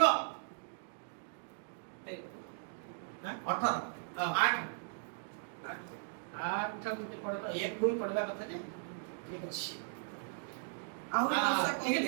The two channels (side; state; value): left; silent; digital silence